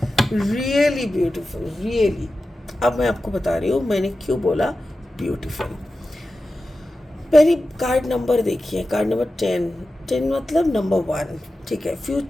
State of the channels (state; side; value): normal; both; correlation 0.94